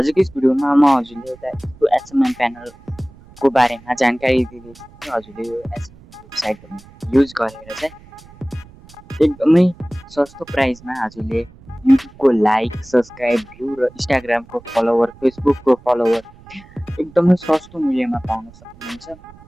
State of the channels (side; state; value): right; noise; rumble, 23 dB below the sound